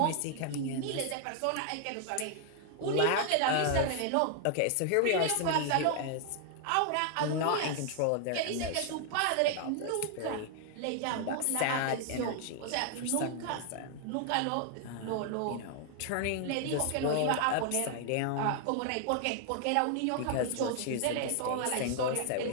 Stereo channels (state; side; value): different; both; correlation 0.00